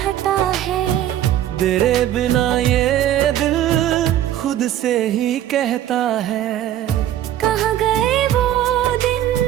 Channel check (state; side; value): quieter; left; 12.1 dB